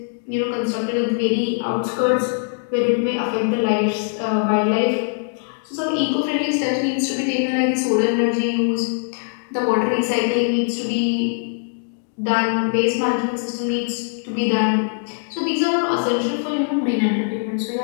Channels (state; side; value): silent; right; 61 dB below the other